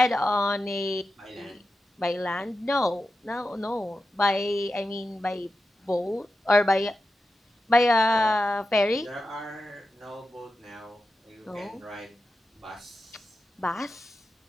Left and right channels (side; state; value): both; normal; correlation 0.91